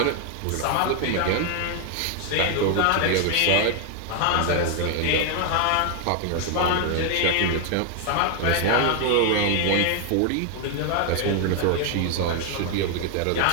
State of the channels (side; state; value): both; different; correlation 0.01